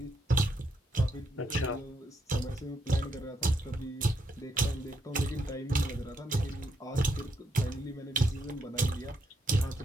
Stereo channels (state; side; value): normal; both; correlation 0.77